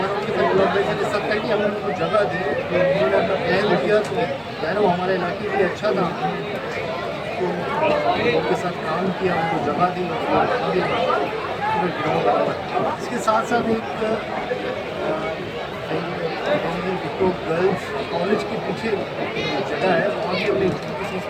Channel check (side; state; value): both; identical; correlation 1.00